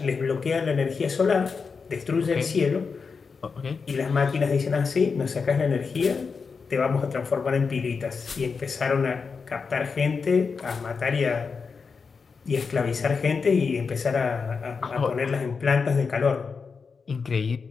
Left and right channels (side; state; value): right; quieter; 5.2 dB